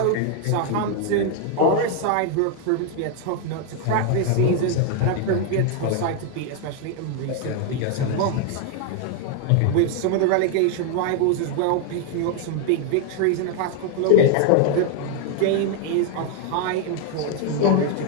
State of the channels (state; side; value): different; both; correlation 0.01